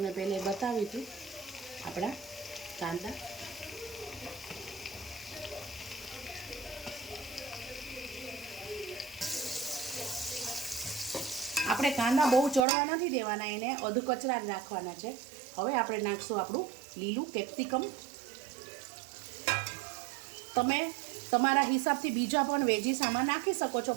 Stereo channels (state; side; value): drops out; left; at 12.7 s